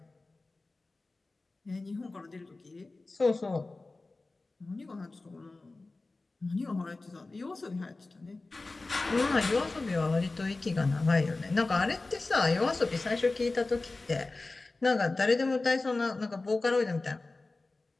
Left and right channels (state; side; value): quieter; right; 3.3 dB